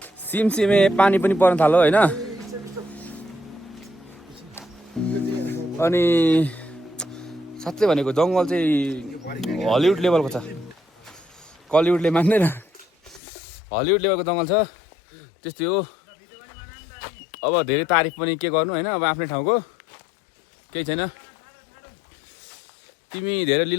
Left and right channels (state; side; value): drops out; right; at 13.2 s